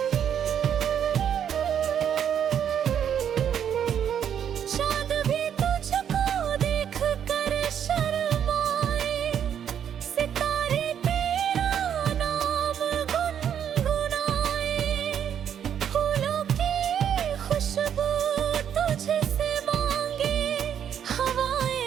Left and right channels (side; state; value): left; quieter; 8.9 dB